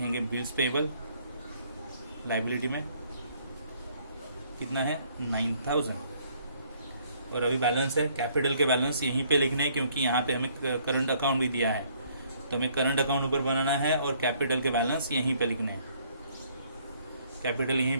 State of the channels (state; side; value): inverted; both; correlation -0.64